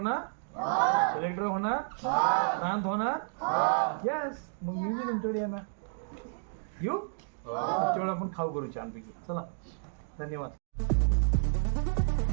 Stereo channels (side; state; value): left; silent; digital silence